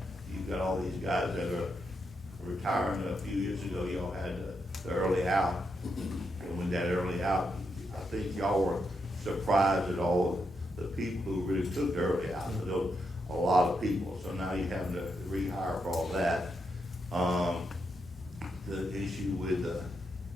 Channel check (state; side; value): normal; both; correlation 0.83